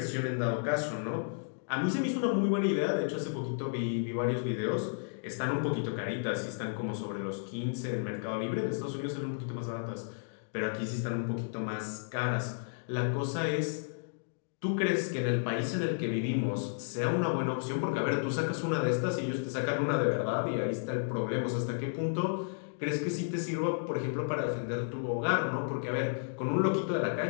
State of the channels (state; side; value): silent; right; digital silence